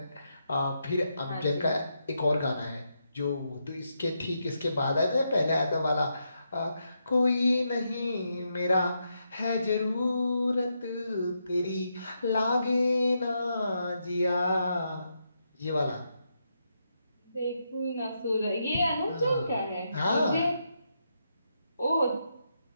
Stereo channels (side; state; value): both; inverted; correlation -0.82